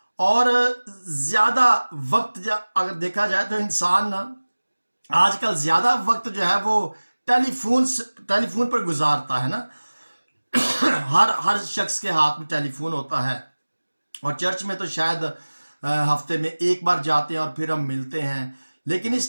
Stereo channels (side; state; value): both; inverted; correlation -1.00